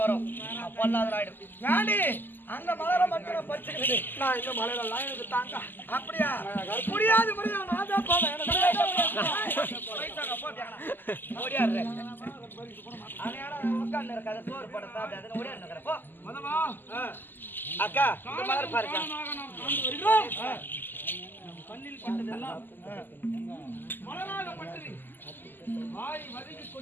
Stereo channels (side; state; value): right; late; 0.091 ms